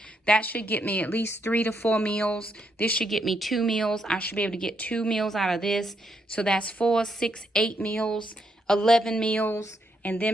That should get me at least 3 to 4 meals. This should get me 2 meals. I should be able to get 2 meals out of this. So that's 4, 6, 8 meals, 11 meals, and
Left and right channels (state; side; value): normal; both; correlation 0.77